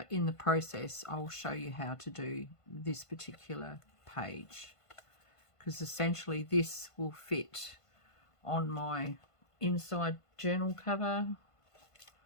in the process I'll show you how to do this particular page, because essentially this will fit on my inside journal cover.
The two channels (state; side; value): late; right; 1.5 ms